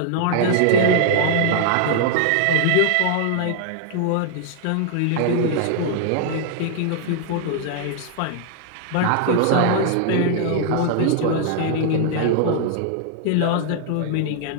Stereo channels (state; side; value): different; both; correlation -0.01